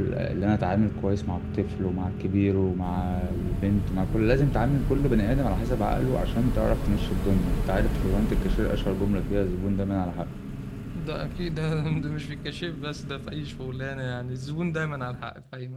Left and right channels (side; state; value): both; identical; correlation 1.00